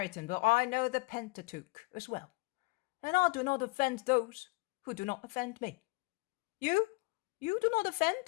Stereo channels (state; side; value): quieter; right; 25.4 dB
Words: but I know the Pentateuch as well, and I do not offend those who do not offend me. You do not